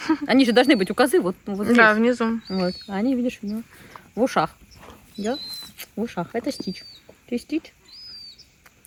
Они же должны быть у козы, вот, ну, вот здесь. Да, внизу. Вот. А они, видишь, у него в ушах. Да? В ушах. Это Стич. Ты Стич?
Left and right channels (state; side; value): identical; both; correlation 1.00